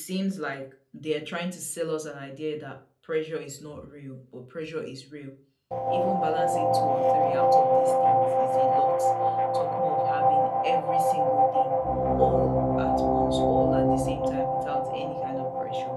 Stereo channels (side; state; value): both; identical; correlation 1.00